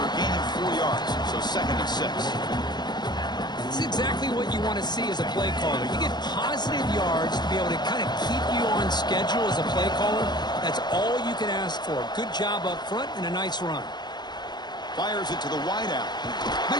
gaining 4 yards, so second and 6. It's exactly what you want to see as a play caller. You get positive yards to be able to kind of keep you on schedule as a play caller. That's all you can ask for. Good job up front and a nice run. Fires it to the wideout.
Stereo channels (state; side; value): late; right; 0.21 ms